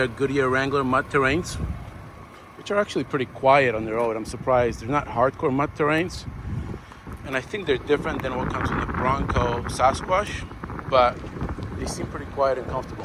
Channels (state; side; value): identical; both; correlation 1.00